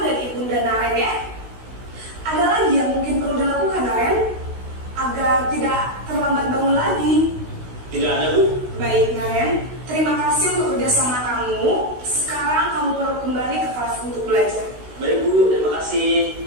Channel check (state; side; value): late; left; 16 ms